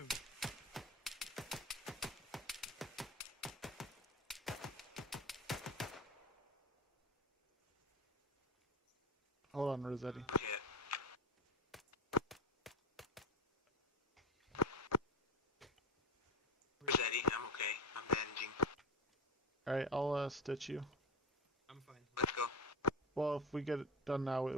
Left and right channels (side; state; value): both; normal; correlation 0.21